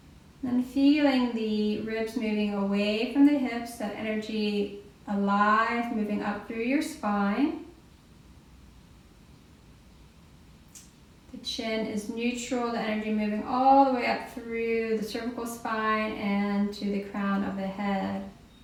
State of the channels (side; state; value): both; identical; correlation 1.00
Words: Then feeling the ribs moving away from the hips, that energy alive, moving up through your spine. The chin is neutral, the energy moving all the way up through the cervical spine and to the crown of the head.